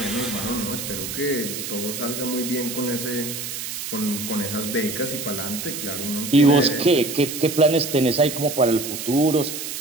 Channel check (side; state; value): right; noise; hiss, 6 dB below the sound